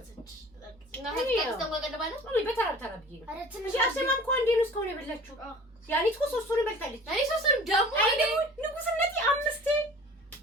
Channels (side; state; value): both; normal; correlation 0.43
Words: እና ከዚህ ተንጓቀደባለ ወይ በተራ ብዬ ነው አረ ትንሽ እንጂ አሰማም እኮ አንዴ ነው እስካሁን የበላችሁ ያኔት እኮ ሶስቱን በልታለች እኔ ሶስቱንም ደግሞ አይኔ ንጉስነቴ አምስቴ